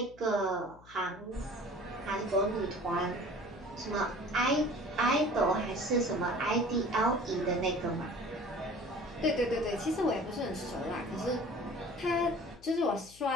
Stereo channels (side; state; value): left; noise; hum, 23 dB below the sound